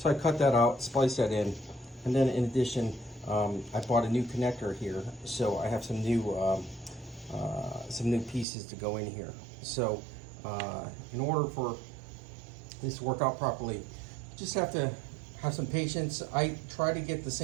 I cut that out, spliced that in, and then in addition, I bought a new connector here, so I have some new pieces to go in here. So in order for this to work out properly, just have to have some patience. I try to get the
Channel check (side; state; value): left; drops out; at 8.5 s